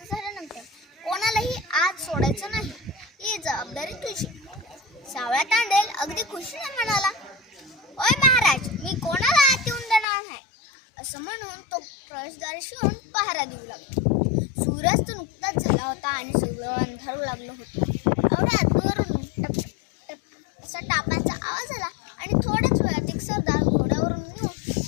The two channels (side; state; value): right; drops out; at 10.1 s